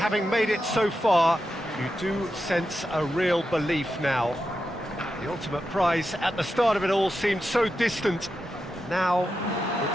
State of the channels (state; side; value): normal; both; correlation 0.88